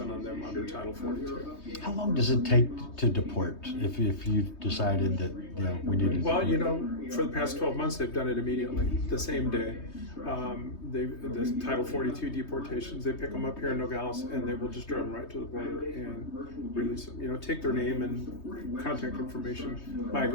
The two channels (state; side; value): late; right; 3.2 ms